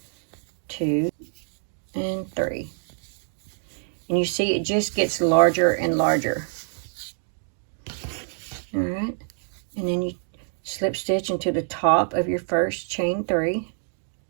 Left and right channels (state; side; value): silent; left; digital silence